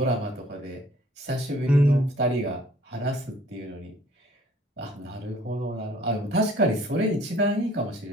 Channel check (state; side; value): normal; both; correlation 0.56